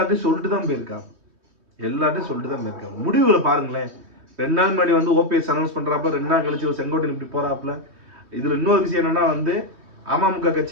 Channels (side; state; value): left; late; 3.2 ms